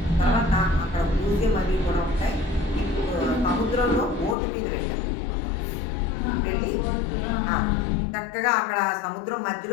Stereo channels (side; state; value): right; drops out; at 4.4 s